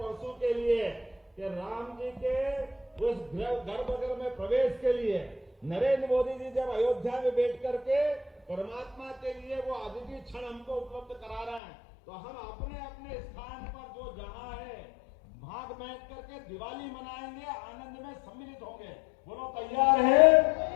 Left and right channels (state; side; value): drops out; right; at 11.6 s